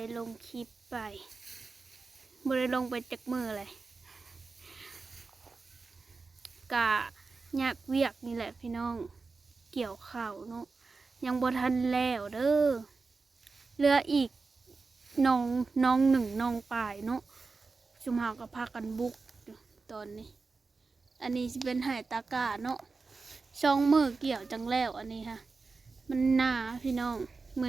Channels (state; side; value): quieter; left; 4.2 dB